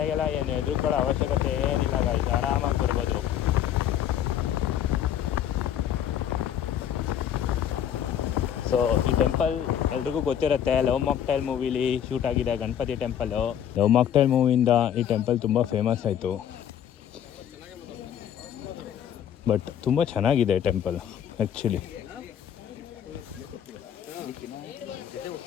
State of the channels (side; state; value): right; quieter; 9.8 dB